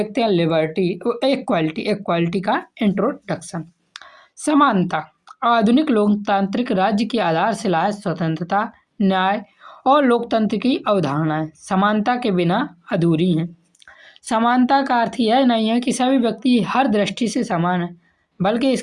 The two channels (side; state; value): both; identical; correlation 1.00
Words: हैं लिबर्टी इक्वालिटी का इंट्रोडक्शन। समानता आधुनिक लोकतांत्रिक राज्य की आधारशिला है। स्वतंत्रता, न्याय और लोकतंत्र की अवधारणाएं समानता के बिना अधूरी हैं। समानता का अर्थ यह नहीं है कि सभी व्यक्ति हर दृष्टि से समान है, बल्कि